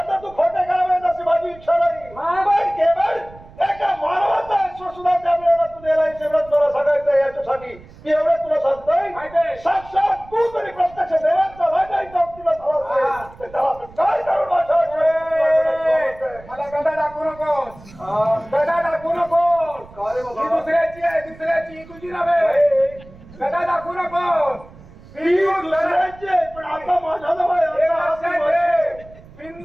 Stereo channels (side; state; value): right; noise; rumble, 21 dB below the sound